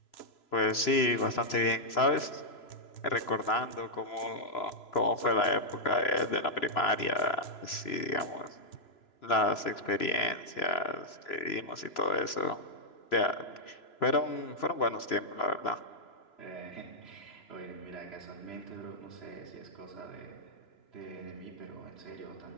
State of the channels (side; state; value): right; late; 3.0 ms